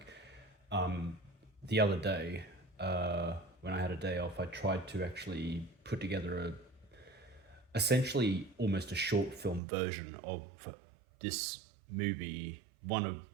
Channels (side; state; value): left; drops out; at 9.6 s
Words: Um, the other day, when I had a day off, I tried to actually put together essentially almost a short film version of this movie, one